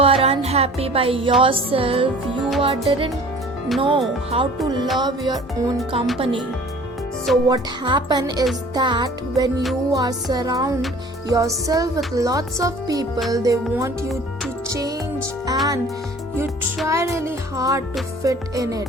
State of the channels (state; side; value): normal; both; correlation 0.48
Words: unhappy by yourself. You didn't know how to love your own company. So what happen is that when you are surround yourself with lots of people, they want you to change and you try really hard to fit in it.